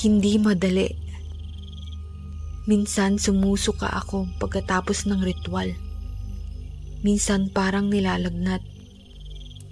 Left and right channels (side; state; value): both; identical; correlation 1.00